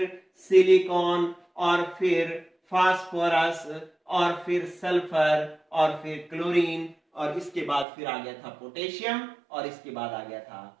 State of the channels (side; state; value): left; drops out; at 7.9 s